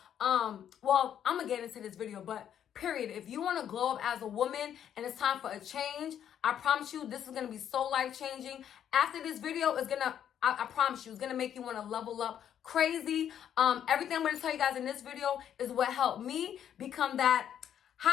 well, I'm going to get into this video, but period. If you want to glow up as a woman and it's time for a change, I promise you this is going to be so life-changing. After this video is going to, I promise you, it's going to make you want to level up crazy. Everything I'm going to tell you guys in this video is what helped me become that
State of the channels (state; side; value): quieter; right; 9.6 dB